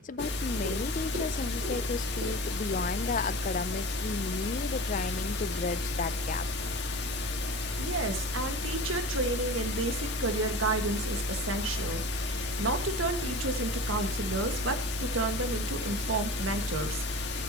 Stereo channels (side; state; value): both; normal; correlation 0.35